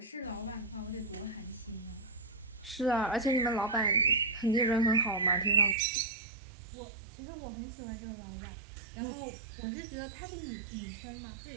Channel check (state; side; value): drops out; left; at 5.8 s